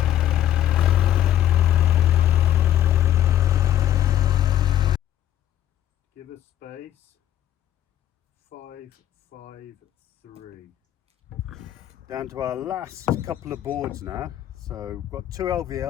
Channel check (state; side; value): quieter; right; 11.4 dB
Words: Give us space. 5, 5, 3. Down to our last couple of boards now. So we've got 2